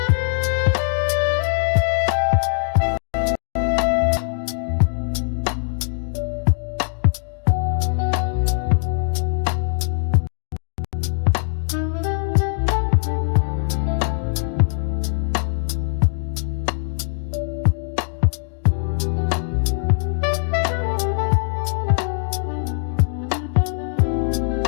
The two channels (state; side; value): silent; right; digital silence